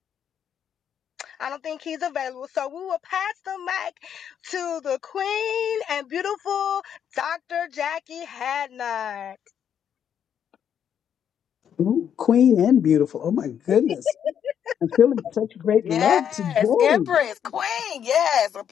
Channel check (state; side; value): quieter; right; 8.7 dB